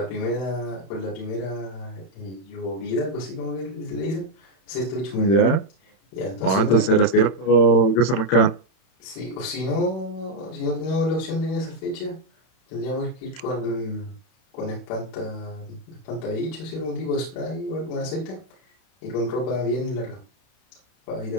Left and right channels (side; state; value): right; late; 31 ms